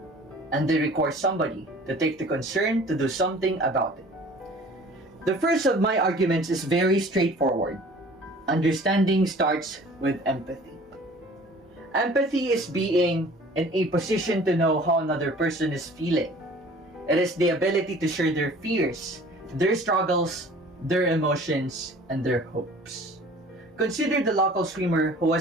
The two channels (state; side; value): normal; both; correlation 0.48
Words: and they require somebody to take the concern to do something about it. The first of my arguments is very straightforward. Understanding starts with empathy. Empathy is being in a position to know how another person is feeling. It is the ability to share their fears, their struggles, their emotions, and their hopes. Consider the local swimmer who